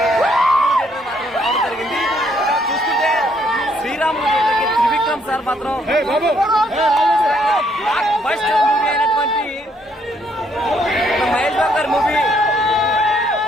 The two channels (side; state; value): both; normal; correlation 0.69